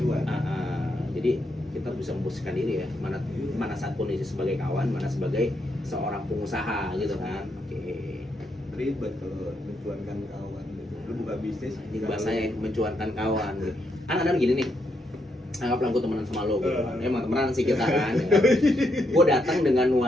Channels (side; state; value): both; normal; correlation 0.79